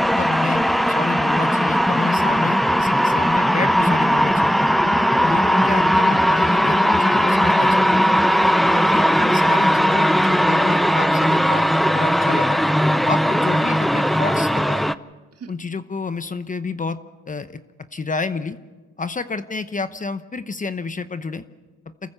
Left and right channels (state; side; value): normal; both; correlation 0.93